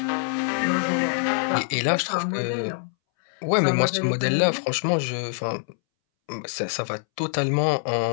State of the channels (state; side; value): silent; right; 62 dB below the other